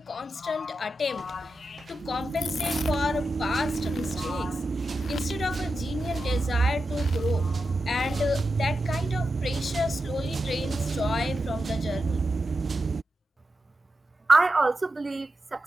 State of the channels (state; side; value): normal; both; correlation 0.89